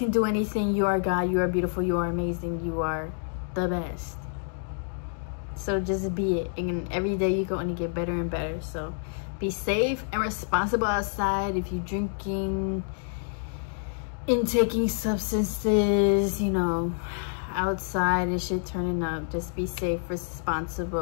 do anything. You are God. You are beautiful. You are amazing. You are the best. So just be it, and every day you can only get better and better. So be safe and responsible outside. If you're drinking, intaking substances, you know, outside and shit turning up, just be safe,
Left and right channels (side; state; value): right; silent; digital silence